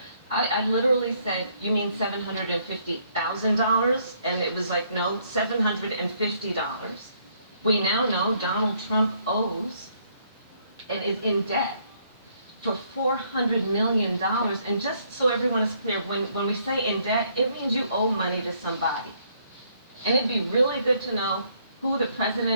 I literally said, "You mean $750,000?" And it was like, no, $750. We now know Donald Trump owes and is in debt for $400 million. And just so everyone is clear, when we say in debt, it means you owe money to somebody. And it'd be really good to know who the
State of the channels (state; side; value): inverted; both; correlation -0.68